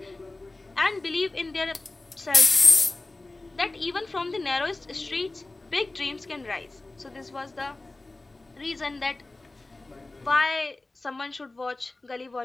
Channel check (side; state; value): right; quieter; 3.1 dB